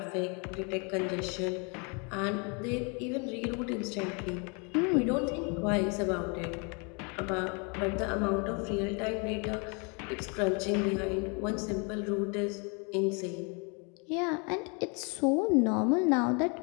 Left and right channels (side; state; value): right; quieter; 33.9 dB